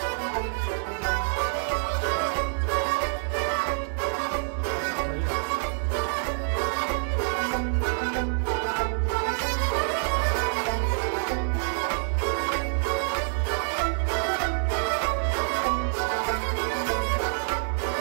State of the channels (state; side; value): silent; left; digital silence